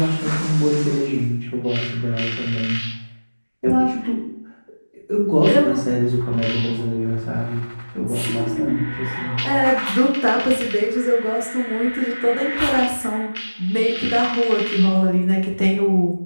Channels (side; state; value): both; inverted; correlation -1.00